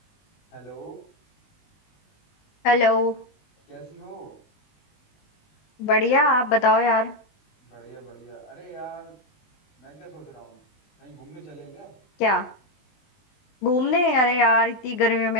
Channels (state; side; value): late; right; 20 ms